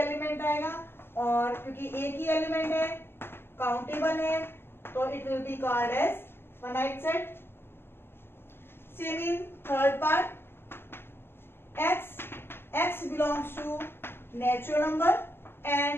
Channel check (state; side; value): late; right; 0.11 ms